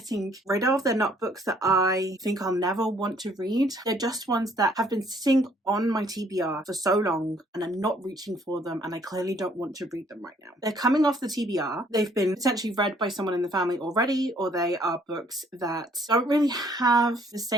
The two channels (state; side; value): normal; both; correlation 0.63